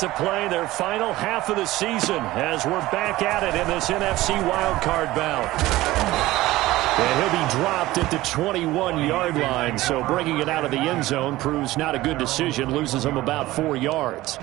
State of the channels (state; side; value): quieter; left; 17.4 dB